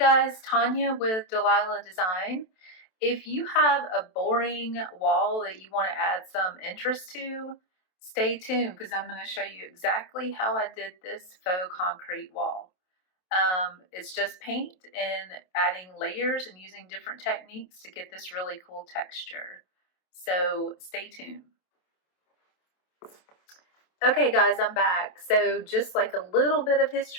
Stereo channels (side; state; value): right; late; 27 ms